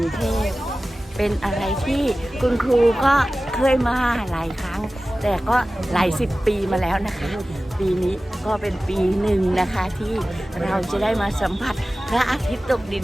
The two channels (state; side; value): normal; both; correlation 0.96